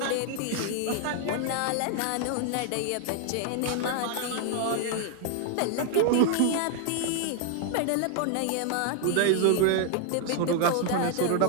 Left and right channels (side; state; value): both; different; correlation 0.00